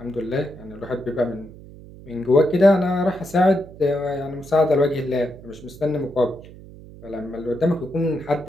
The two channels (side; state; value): right; noise; hum, 18 dB below the sound